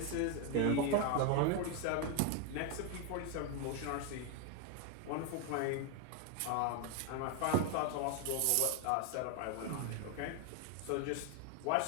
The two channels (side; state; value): both; different; correlation 0.01